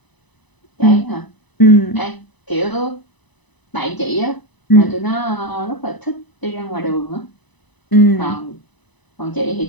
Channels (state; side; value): late; right; 1.0 ms